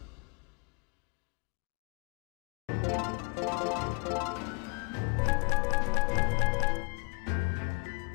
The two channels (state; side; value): quieter; right; 33.1 dB